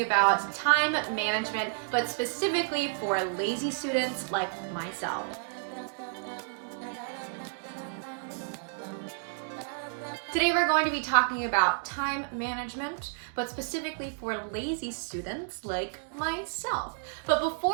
time management, but specifically for lazy students like myself. Today we're going to be talking about time management, but specifically for lazy students like myself. But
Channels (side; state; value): left; silent; digital silence